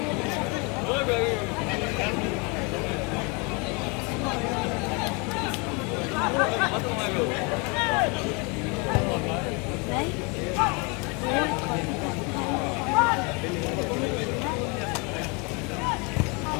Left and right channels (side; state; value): right; quieter; 30.8 dB